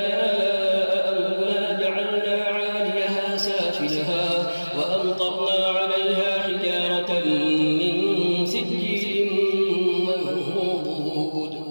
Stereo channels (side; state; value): both; inverted; correlation -1.00